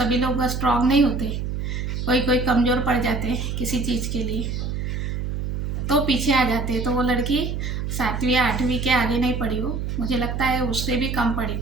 लोग स्ट्रांग नहीं होते, कोई कोई कमज़ोर पड़ जाते हैं किसी चीज़ के लिए, तो पीछे आ जाते हैं। तो वो लड़की 7वीं या 8वीं के आगे नहीं पढ़ी वो, मुझे लगता है उससे भी कम पढ़ी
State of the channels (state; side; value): noise; right; hum, 3 dB below the sound